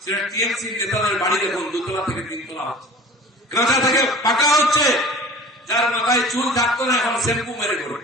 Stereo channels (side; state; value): both; normal; correlation 0.42